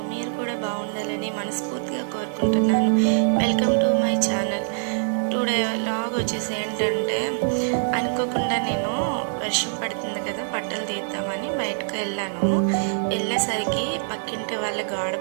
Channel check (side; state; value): left; silent; 62 dB below the other